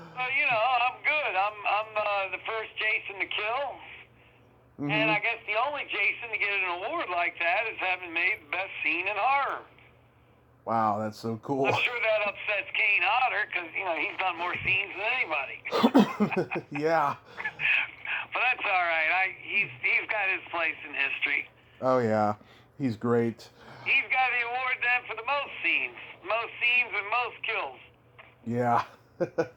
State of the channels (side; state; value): both; identical; correlation 1.00